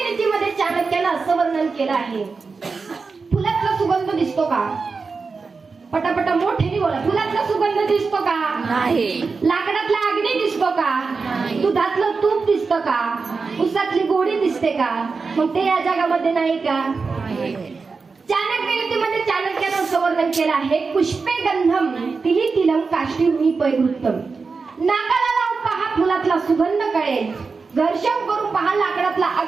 नीतीमध्ये चाणक्यानं असं वर्णन केलं आहे, फुलातला सुगंध दिसतो का? पटापटा मोठ्याने बोला. फुलातला सुगंध दिसतो का? नाही. लाकडातला अग्नी दिसतो का? दुधातलं तूप दिसतं का? उसातली गोडी दिसते का? मग ते या जगामध्ये नाही का? चाणक्य नीतीमध्ये चाणक्यानं असं वर्णन केलं आहे, पुष्पे गंधम तिली तिलम काष्टी पैवृत्तम. नाकाला लावून पहा फुलातला सुगंध कळेल, घर्षण करून पहा लाकडातला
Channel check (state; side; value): quieter; left; 4.6 dB